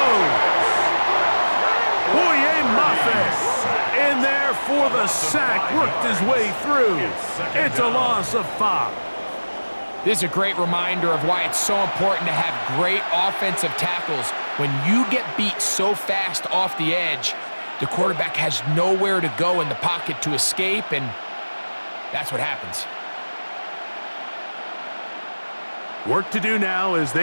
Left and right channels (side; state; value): both; inverted; correlation -1.00